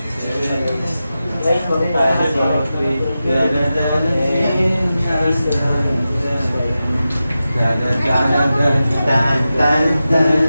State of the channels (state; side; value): inverted; both; correlation -0.92